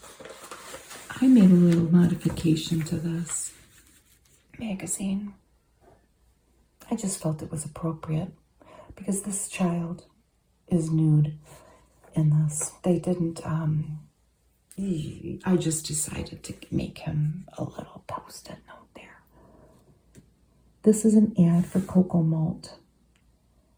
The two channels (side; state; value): both; identical; correlation 1.00